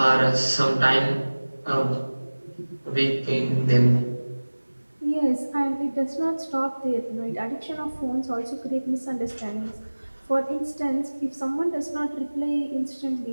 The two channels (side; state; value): both; inverted; correlation -1.00